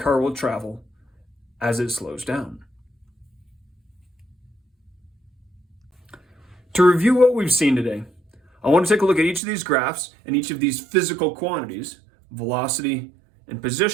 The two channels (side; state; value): left; drops out; at 9.4 s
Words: will travel as it slows down. To review what we've seen today, I want to take a look at each of these graphs and each of these physical quantities, velocity and